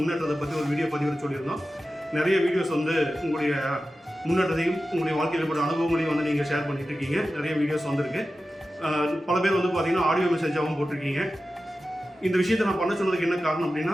பற்றி ஒரு வீடியோ பதிவு சொல்லியிருந்தோம். நிறைய வீடியோஸ் வந்து உங்களுடைய முன்னேற்றத்தையும் உங்களுடைய வாழ்க்கையில் ஏற்பட்ட அனுபவங்களையும் வந்து நீங்கள் ஷேர் பண்ணிட்டு இருக்கீங்க. நிறைய வீடியோஸ் வந்திருக்கு. பல பேர் வந்து பார்த்திங்கன்னா ஆடியோ மெசேஜாகவும் போட்டிருக்கீங்க. இந்த விஷயத்தை நான் பண்ண சொன்னதுக்கு என்ன காரணம்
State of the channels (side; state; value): both; normal; correlation 0.93